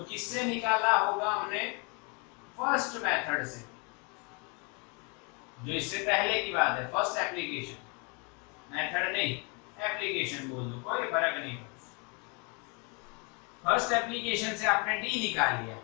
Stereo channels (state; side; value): quieter; right; 33.0 dB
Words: किससे निकाला होगा हमने? फर्स्ट मेथड से, जो इससे पहले की बात है, फर्स्ट एप्लीकेशन। मेथड नहीं, एप्लीकेशन बोल दो, कोई फर्क नहीं पड़ता। फर्स्ट एप्लीकेशन से आपने डी निकाल लिया।